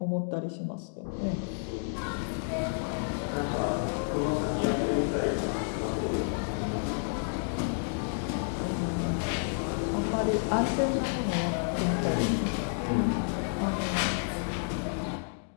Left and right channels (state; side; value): silent; right; digital silence